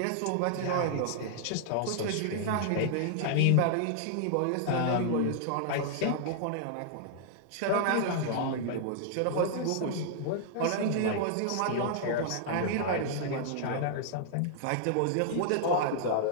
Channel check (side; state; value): both; different; correlation -0.01